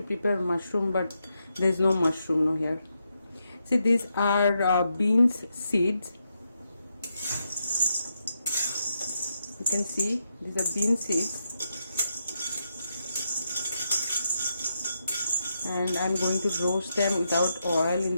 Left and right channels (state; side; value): inverted; both; correlation -0.83